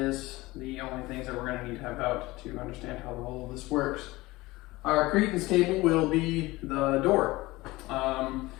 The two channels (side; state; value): right; quieter; 20.2 dB